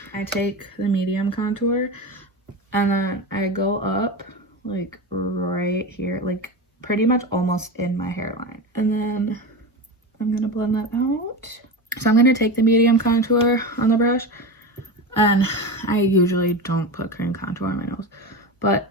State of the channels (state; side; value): normal; both; correlation 0.23